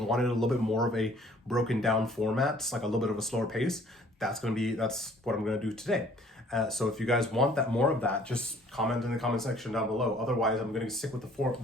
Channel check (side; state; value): both; normal; correlation 0.56